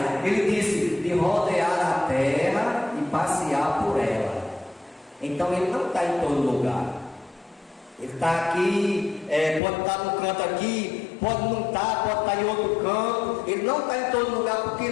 Ele disse: de rodear a terra e passear por ela. Então ele não está em todo lugar. Ele está aqui, pode estar no canto aqui, pode não estar, pode estar em outro canto. Ele não está em todo lugar porque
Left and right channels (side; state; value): right; drops out; at 9.6 s